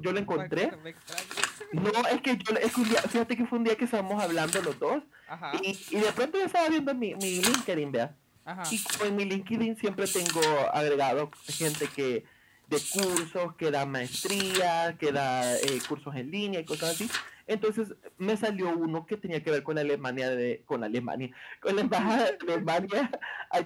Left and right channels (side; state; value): both; identical; correlation 1.00